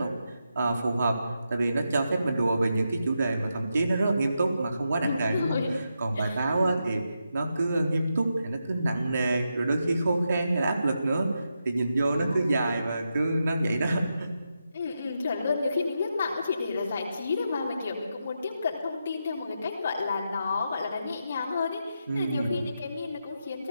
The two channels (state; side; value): inverted; both; correlation -0.86